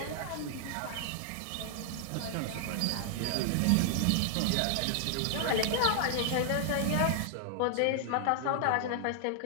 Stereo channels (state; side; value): different; both; correlation 0.00